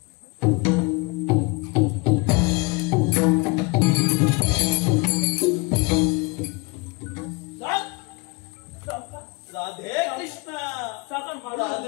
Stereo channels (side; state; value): right; quieter; 27.5 dB